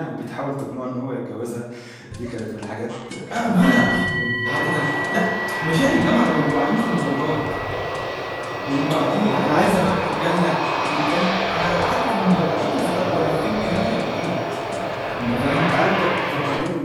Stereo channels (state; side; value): identical; both; correlation 1.00